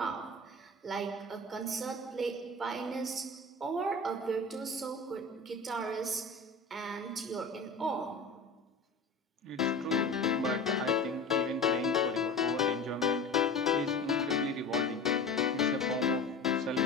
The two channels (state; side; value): quieter; right; 3.3 dB